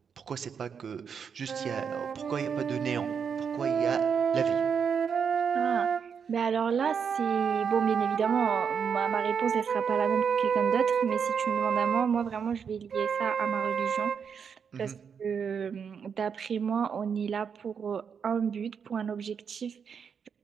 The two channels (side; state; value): left; quieter; 6.8 dB